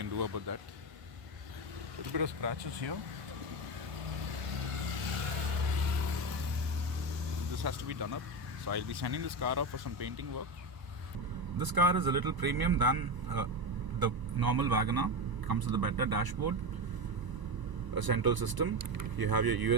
do about that. A little bit of scratches here. This has to be done up, so I'll be sending this car up for some painting work. This car is a little premium than the normal Wagoner. Comes with a better dashboard, a central system. You have your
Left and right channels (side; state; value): left; late; 1.0 ms